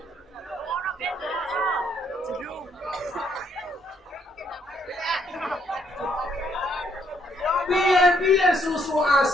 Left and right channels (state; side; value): normal; both; correlation 0.71